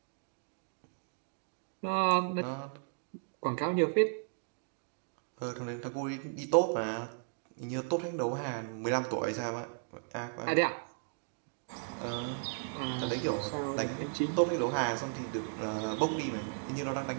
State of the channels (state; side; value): silent; left; digital silence